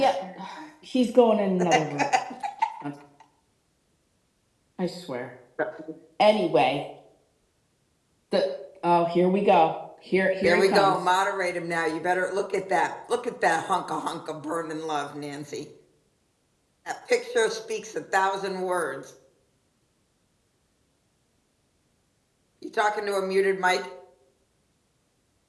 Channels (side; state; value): both; identical; correlation 1.00